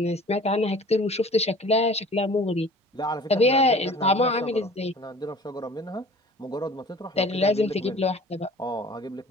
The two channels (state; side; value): normal; both; correlation 0.46